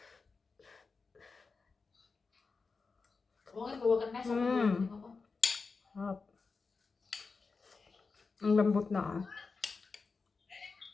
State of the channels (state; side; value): quieter; right; 4.5 dB